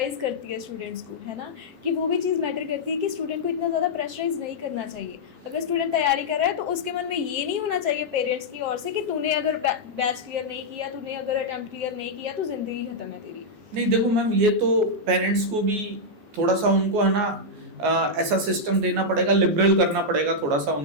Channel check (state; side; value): late; left; 11 ms